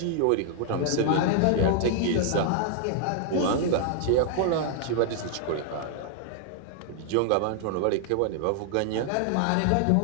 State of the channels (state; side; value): different; both; correlation 0.00